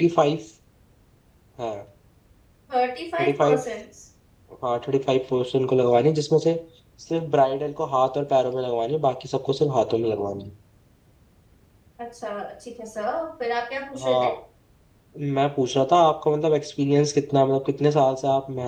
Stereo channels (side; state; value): both; identical; correlation 1.00